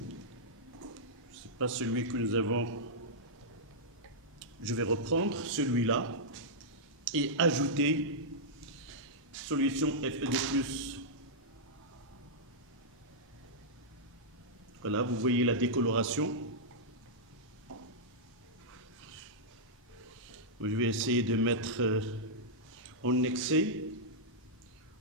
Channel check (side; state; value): both; normal; correlation -0.10